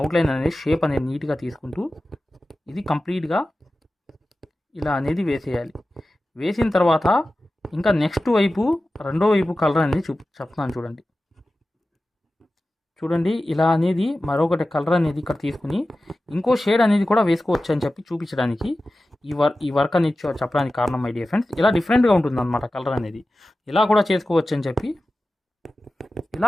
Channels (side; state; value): both; normal; correlation 0.94